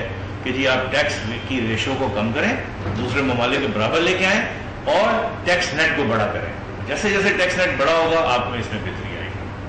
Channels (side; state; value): both; identical; correlation 1.00